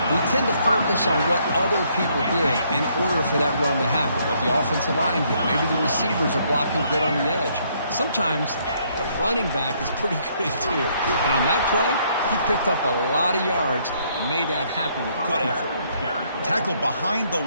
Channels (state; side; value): inverted; both; correlation -0.69